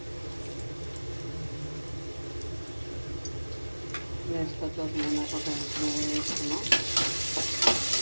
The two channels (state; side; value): inverted; both; correlation -1.00